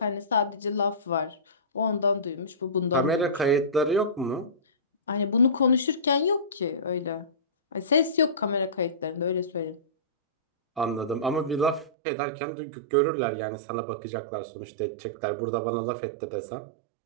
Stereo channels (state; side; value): drops out; left; at 11.9 s